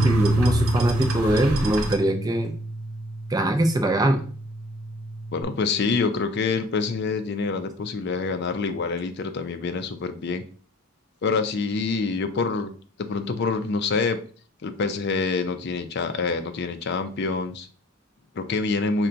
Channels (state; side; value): normal; both; correlation 0.55